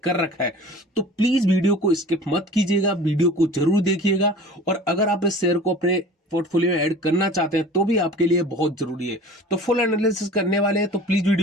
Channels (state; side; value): normal; both; correlation 0.42